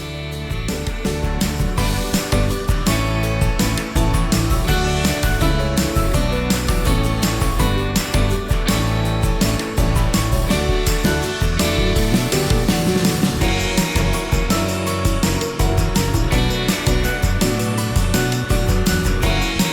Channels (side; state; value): both; identical; correlation 1.00